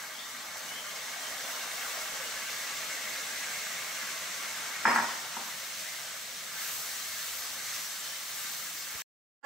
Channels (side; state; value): both; normal; correlation 0.56